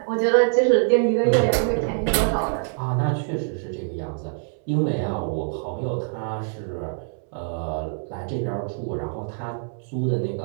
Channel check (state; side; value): silent; left; 62 dB below the other